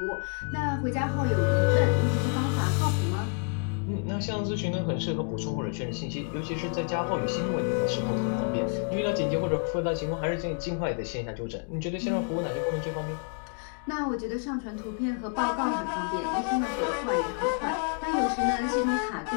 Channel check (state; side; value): quieter; right; 38.0 dB